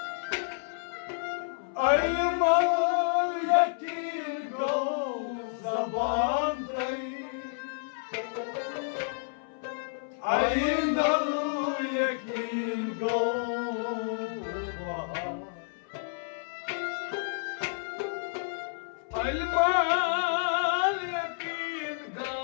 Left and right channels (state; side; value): silent; right; 58 dB below the other